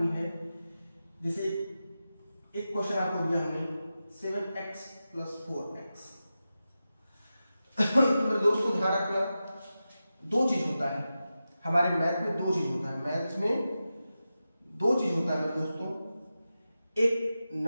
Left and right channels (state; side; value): inverted; both; correlation -0.92